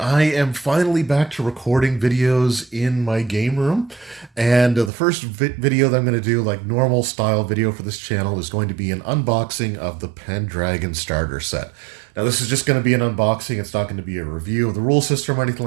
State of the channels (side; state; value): left; drops out; at 4.9 s